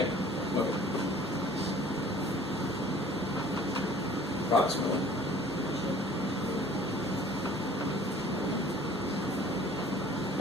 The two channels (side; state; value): both; normal; correlation 0.50